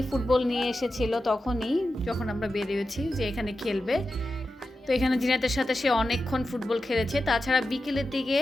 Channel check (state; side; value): normal; both; correlation 0.91